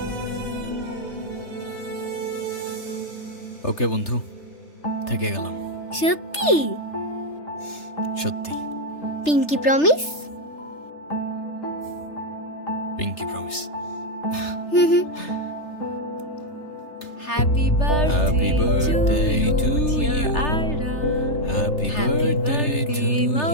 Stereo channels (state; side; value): late; right; 3.3 ms